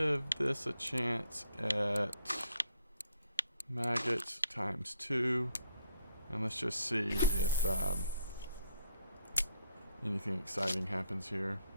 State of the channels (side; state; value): both; inverted; correlation -0.67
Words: this a chance at maggots times 2, and let's just see if anything exciting happens here.